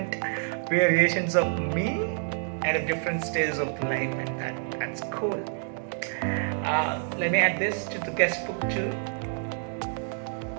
variations of me at a different stage of life, and that's cool. Let me add this to the guest book too.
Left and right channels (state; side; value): silent; left; 59 dB below the other